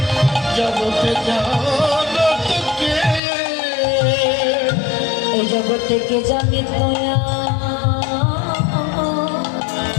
জগতে জানতকে এই জগতে কে জানে দয়া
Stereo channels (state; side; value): drops out; right; at 3.2 s